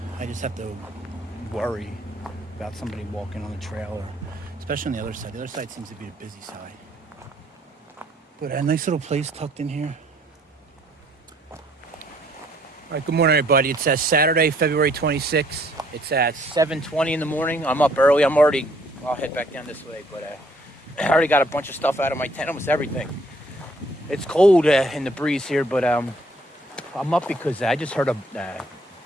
I just have to worry about somebody walking on the trail, or especially on the other side. The other side seems to be the busy side. But a nice little place tucked in here. All right, good morning, everybody. It's Saturday, February 26th. It's at 7:20 in the morning. I'm up early. I'll head back down this way, but I already got a bunch of stuff out of my tent, almost everything. It's cold in the breeze here, but I'm up because I just heard a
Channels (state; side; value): normal; both; correlation 0.64